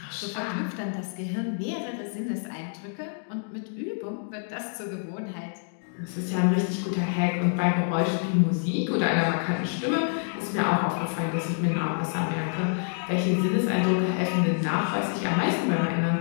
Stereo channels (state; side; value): silent; right; digital silence